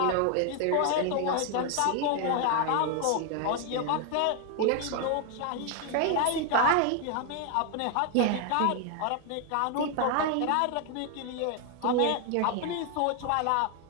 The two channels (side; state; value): both; different; correlation 0.00